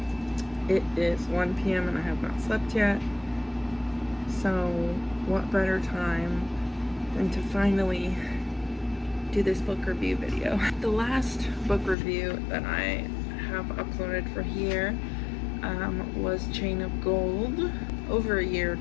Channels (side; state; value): right; drops out; at 12.0 s